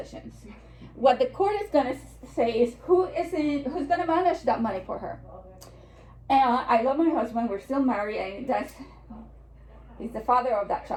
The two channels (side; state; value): both; identical; correlation 1.00